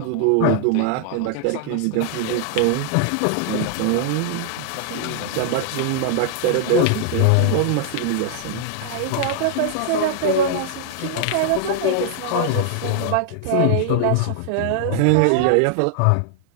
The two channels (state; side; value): different; both; correlation 0.00